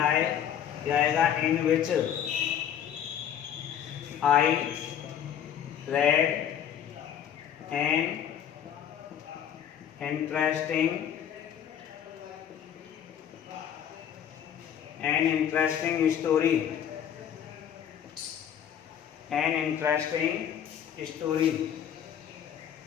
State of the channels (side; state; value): right; quieter; 9.3 dB